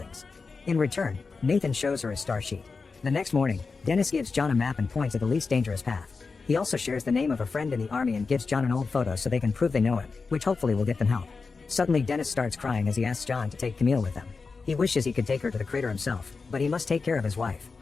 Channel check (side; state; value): right; quieter; 4.5 dB